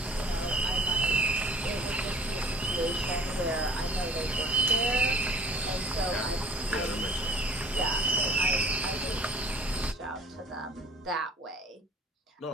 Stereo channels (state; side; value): normal; both; correlation 0.50